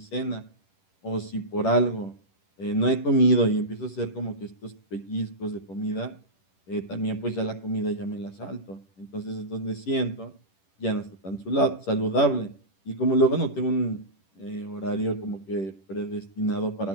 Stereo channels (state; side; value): late; right; 10 ms